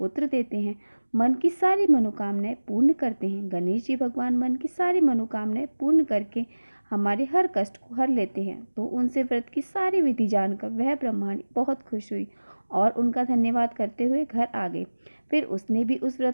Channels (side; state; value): both; inverted; correlation -1.00